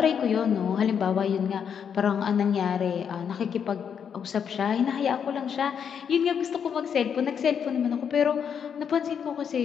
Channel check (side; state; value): right; quieter; 7.5 dB